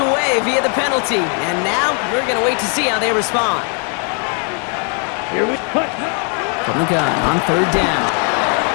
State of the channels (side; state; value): right; quieter; 39.4 dB